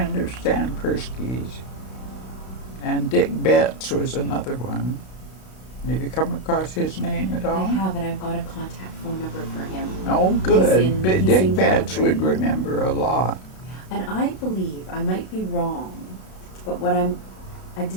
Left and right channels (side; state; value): right; late; 32 ms